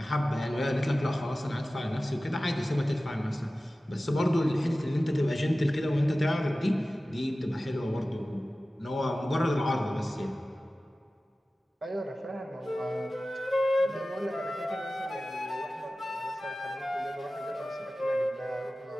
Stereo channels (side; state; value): both; normal; correlation 0.96